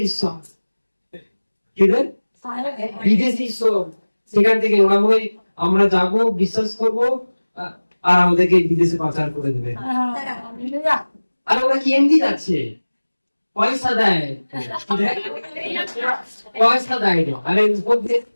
ঈশ্বর, কি রে বিদেশি ঈশ্বর। সেখান থেকে ওরা বলে আমরা যাবো, বিশ্বাস করবো, আর আমাদেরকে বিদেশে পাচার করে দেবে। আর ওরা কি এমনি যাচ্ছে, পয়সা দেয়, পয়সা দেয়। আরে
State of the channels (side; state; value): both; inverted; correlation -1.00